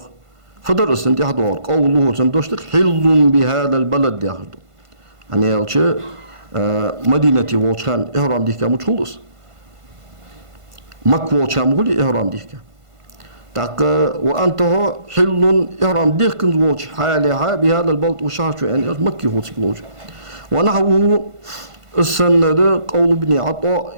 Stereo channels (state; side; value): late; left; 1.5 ms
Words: فدرس تنتح أضاع قوله تندوشتك حل بهذا البلد ياخدو يعني يالشي مدينة ووشان إهرام ديكا متخلص مكة ووشان مغلي إهرام ديكا تاك وأنتها حل إهرام ديكا ووش حالها بهذا البلد وشاشو يعني مكي هو تكلوج ونحوه السند قول